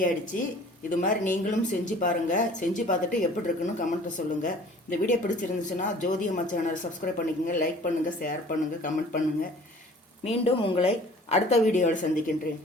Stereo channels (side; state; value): both; normal; correlation 0.49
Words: ஆயிடுச்சு. இது மாதிரி நீங்களும் செஞ்சு பாருங்கள். செஞ்சு பார்த்துட்டு எப்படி இருக்குன்னு கமெண்ட்டில் சொல்லுங்கள். இந்த வீடியோ பிடிச்சிருந்துச்சுன்னா ஜோதி அம்மா சேனல் சப்ஸ்கிரைப் பண்ணிக்கோங்க, லைக் பண்ணுங்கள், ஷேர் பண்ணுங்கள், கமெண்ட் பண்ணுங்கள். மீண்டும் உங்களை அடுத்த வீடியோவில் சந்திக்கின்றேன்.